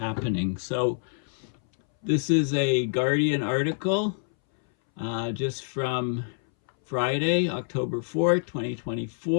So this is a Guardian article just from Friday, October 4th,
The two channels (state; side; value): silent; right; 60 dB below the other